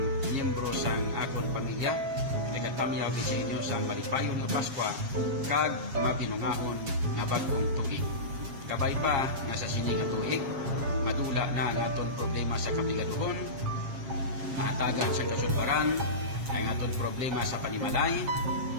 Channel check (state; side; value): late; left; 7.4 ms